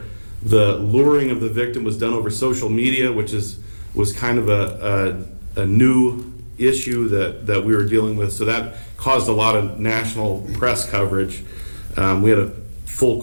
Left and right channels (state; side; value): inverted; both; correlation -1.00